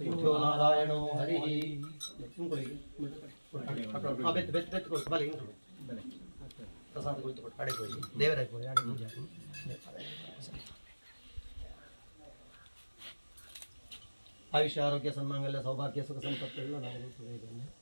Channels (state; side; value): inverted; both; correlation -1.00